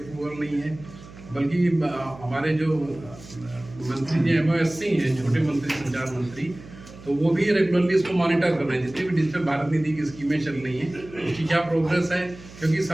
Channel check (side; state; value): right; noise; hum, 18 dB below the sound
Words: नहीं है, बल्कि हमारे जो मंत्री जी MOSC हैं, छोटे मंत्री, संचार मंत्री, तो वो भी रेगुलरली इसको मॉनिटर कर रहे हैं। जितनी भी डिजिटल भारत निधि की स्कीमें चल रही हैं उसकी क्या प्रोग्रेस है, क्योंकि